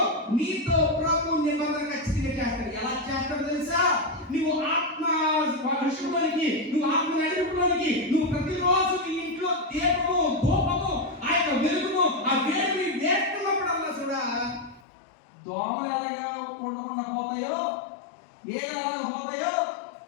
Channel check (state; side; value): drops out; right; at 14.9 s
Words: నీతో ప్రభు నిబంధన ఖచ్చితంగా చేస్తాడు. ఎలా చేస్తాడో తెలుసా? నువ్వు ఆత్మ వర్షంలోనికి, నువ్వు ఆత్మ నడిపులోనికి, నువ్వు ప్రతిరోజు నీ ఇంట్లో దీపము ధూపము ఆ యొక్క వెలుగును ఆ వేడిని వేస్తున్నప్పుడల్లా చూడా దోమలు ఎలాగా ఉండకుండా పోతాయో, ఏలాగా పోతాయో,